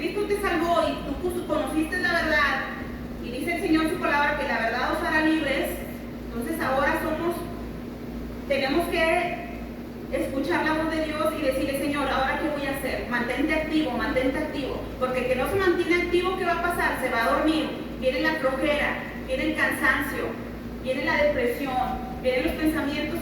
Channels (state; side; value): identical; both; correlation 1.00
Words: te salvó y tú conociste la verdad, y dice el Señor en su palabra que la verdad os hará libres, entonces ahora tenemos que escuchar la voz de Dios y decirle, Señor, ¿ahora qué voy a hacer? Mantente activo, porque el que no se mantiene activo, ¿qué va a pasar? Se va a dormir, viene la flojera, viene el cansancio, viene la depresión, vienen los pensamientos